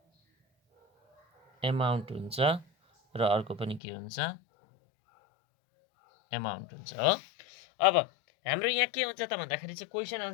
एमाउन्ट हुन्छ र अर्को पनि के हुन्छ? एमाउन्ट हुन्छ हो। अब हाम्रो यहाँ के हुन्छ त भन्दाखेरि चाहिँ क्वेसन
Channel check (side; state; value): right; drops out; at 3.8 s